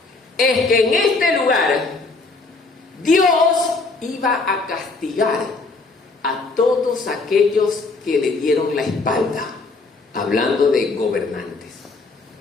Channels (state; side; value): quieter; right; 3.6 dB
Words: Es que en este lugar Dios iba a castigar a todos aquellos que le dieron la espalda, hablando de gobernantes,